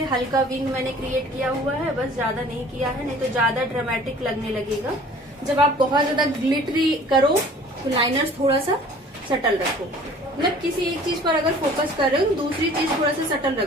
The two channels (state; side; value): normal; both; correlation 0.49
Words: हल्का विंग मैंने क्रिएट किया हुआ है, बस ज्यादा नहीं किया है, नहीं तो ज्यादा ड्रामेटिक लगने लगेगा। जब आप बहुत ज्यादा ग्लिटरी करो तो लाइनर्स थोड़ा सा सटल रखो, मतलब किसी एक चीज पर अगर फोकस कर रहे हो तो दूसरी चीज थोड़ा सा सटल